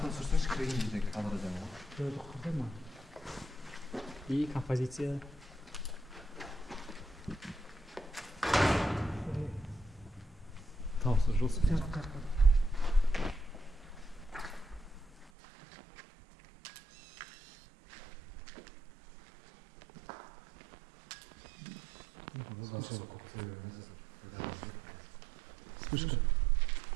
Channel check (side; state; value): left; drops out; at 15.3 s